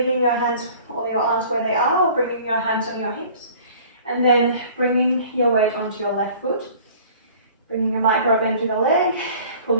your hands or your arms where they are, or bringing your hands on your hips, and then bringing your weight onto your left foot, bringing a micro bend to the leg,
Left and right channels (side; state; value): both; inverted; correlation -0.49